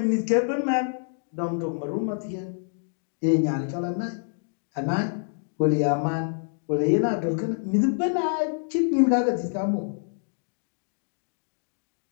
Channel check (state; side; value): silent; right; digital silence